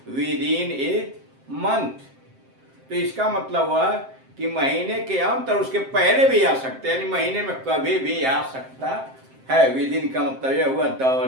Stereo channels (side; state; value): left; late; 7.6 ms